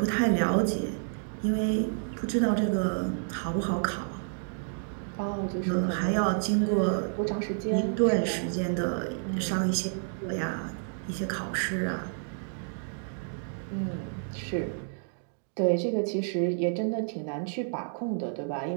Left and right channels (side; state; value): left; silent; digital silence